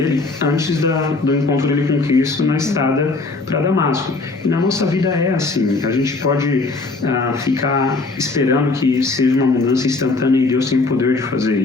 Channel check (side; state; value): right; quieter; 3.6 dB